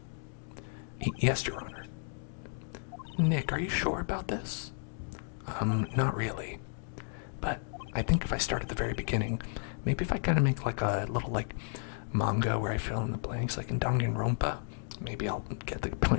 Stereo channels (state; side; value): silent; right; 56 dB below the other